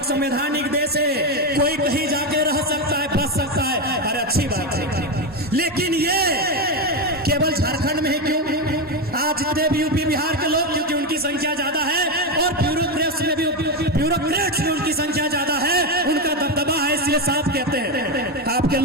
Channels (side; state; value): both; normal; correlation 0.11